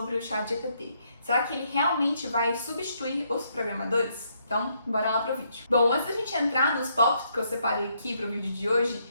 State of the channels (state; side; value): inverted; both; correlation -0.74